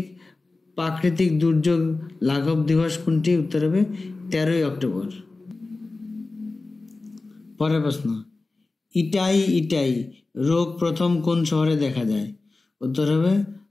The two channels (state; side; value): quieter; right; 3.4 dB